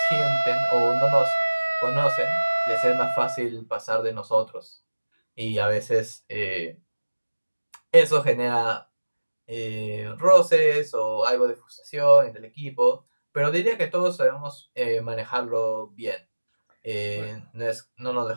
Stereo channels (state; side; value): inverted; both; correlation -1.00